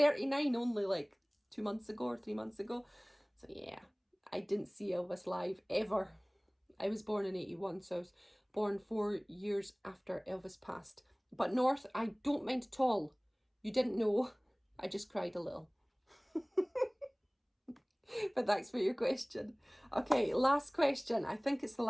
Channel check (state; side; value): identical; both; correlation 1.00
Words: only like 2 months ago or 3 months ago. So yeah, I didn't see Elvis live ever. I was born in 81, so I was born 4 years after Elvis passed. But North, I don't mind at all. You didn't know. I just cried a little. But thanks for your question. Okay, last question. I think it's the